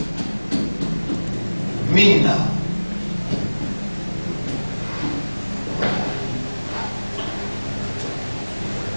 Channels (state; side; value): inverted; both; correlation -1.00